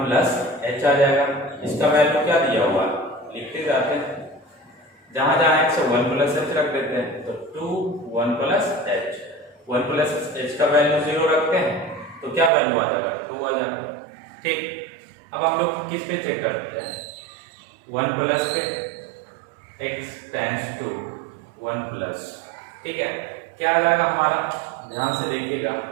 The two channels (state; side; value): drops out; left; at 12.5 s